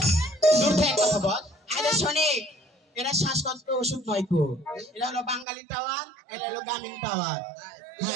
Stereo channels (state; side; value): drops out; left; at 5.5 s